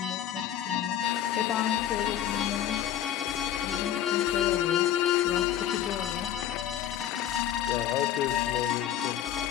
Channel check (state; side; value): quieter; right; 10.9 dB